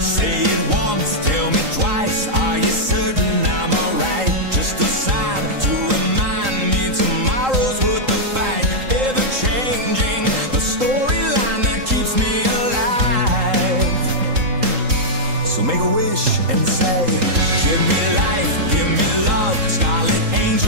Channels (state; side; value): late; left; 3.8 ms